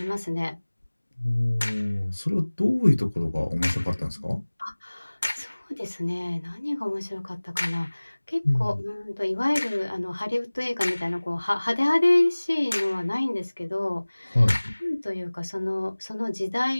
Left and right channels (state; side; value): inverted; both; correlation -1.00